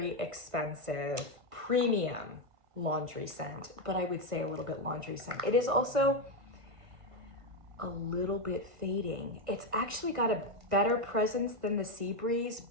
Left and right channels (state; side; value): late; left; 1.5 ms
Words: expensive, premium laundry scent, but I would say a little bit laundry scent. It is also a little bit fading. It's actually got a better presence than the Sea Breeze,